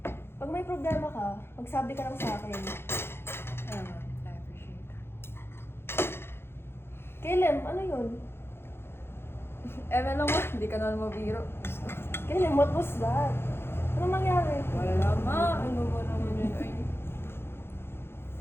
Pag may problema ka, magsabi ka lang sa akin. I appreciate that. Kailan, ano yun? Lang, ma. Hindi ka naman mabiro. Kailan, what was that? Ano nangyari? Wala, ma. Ano ba naman yun? Ay.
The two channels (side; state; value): right; late; 0.11 ms